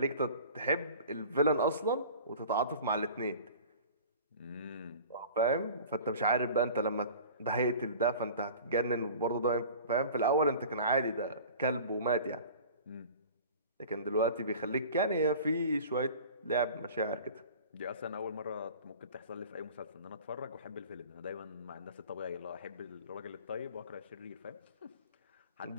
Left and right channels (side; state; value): both; inverted; correlation -0.42